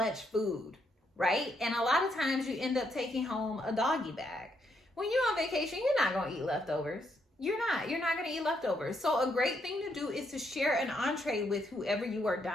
food, right? And a lot of times you end up taking home a doggy bag. When you're on vacation, you're not going to eat leftovers. You're not going to eat leftovers. So a great thing to do is to share an entree with whoever you are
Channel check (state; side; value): normal; both; correlation 0.76